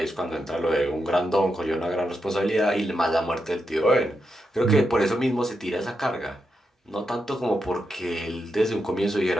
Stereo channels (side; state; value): both; normal; correlation 0.85